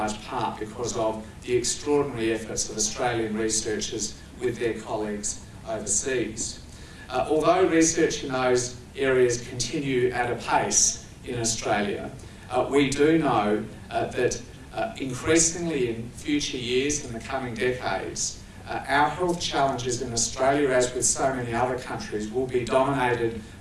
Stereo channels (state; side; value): identical; both; correlation 1.00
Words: part because of the extraordinary efforts of Australian researchers with their colleagues overseas. Although research in those areas continue at a pace in Australia, we do know that increasingly in future years, in the coming decades, our health challenges in Australia, as with so many other countries, will be dominated